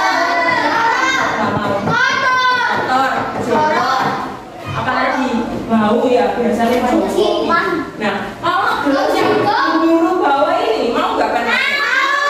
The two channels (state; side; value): identical; both; correlation 1.00